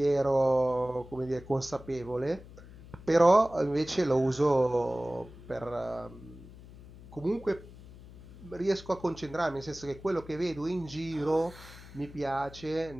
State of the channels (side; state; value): left; noise; hum, 18 dB below the sound